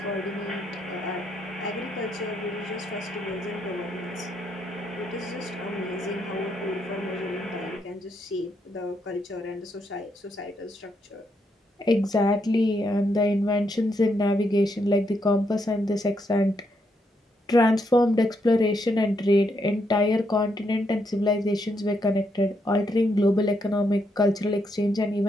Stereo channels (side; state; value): both; normal; correlation 0.78